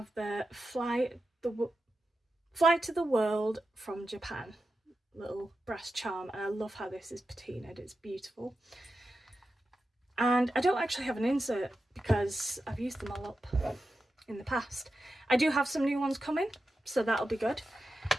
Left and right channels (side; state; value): both; normal; correlation 0.90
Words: the Fly to the World from Japan little brass charm, and I love how this is patinaed. It's beautiful. And I don't actually have an insert because I've used them all up in the past. I do have some new ones coming, so that'll be good.